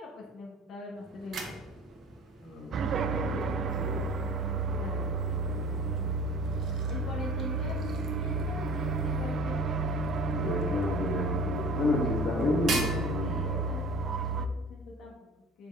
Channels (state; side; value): normal; both; correlation 0.42